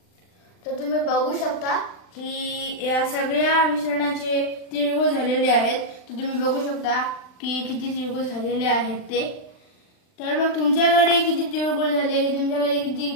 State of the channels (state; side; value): late; right; 39 ms